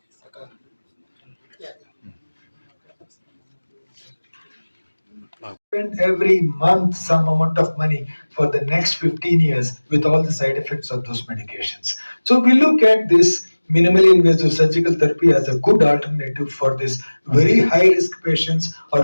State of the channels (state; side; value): inverted; both; correlation -1.00